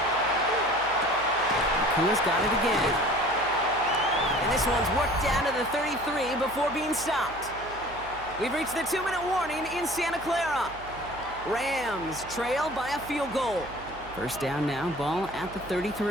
Kua's got it again. And this one's worked down to the 33 before being stopped. We've reached the 2-minute warning in Santa Clara. Rams trail by a field goal. 1st down now, ball at the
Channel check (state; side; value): noise; right; hum, 17 dB below the sound